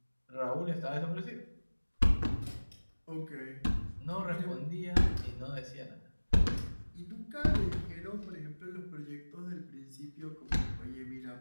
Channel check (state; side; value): inverted; both; correlation -1.00